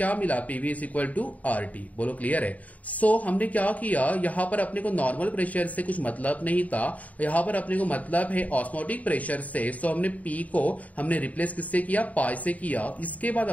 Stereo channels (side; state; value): right; late; 0.071 ms